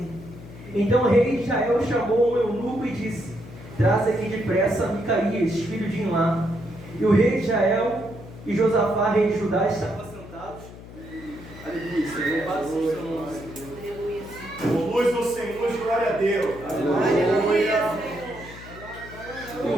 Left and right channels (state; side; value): noise; left; hum, 16 dB below the sound